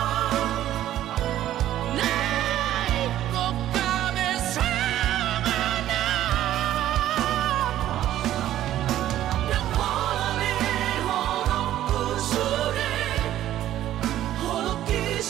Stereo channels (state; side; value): quieter; left; 12.7 dB